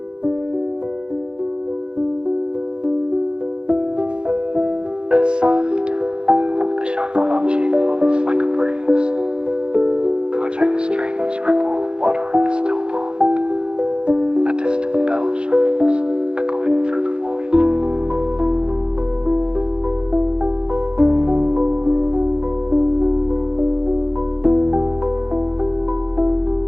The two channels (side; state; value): left; late; 0.053 ms